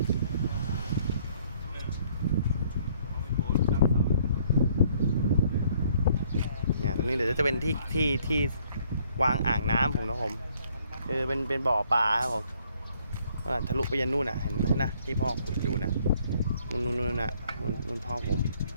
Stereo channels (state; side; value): inverted; both; correlation -0.64